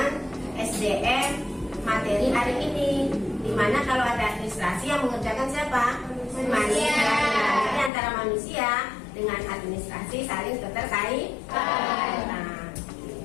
SDM materi hari ini. Dimana kalau ada administrasi yang mengerjakan siapa? Manusia. Jadi antara manusia dengan administrasi saling keterkaitan. Nah,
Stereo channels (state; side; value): drops out; right; at 7.9 s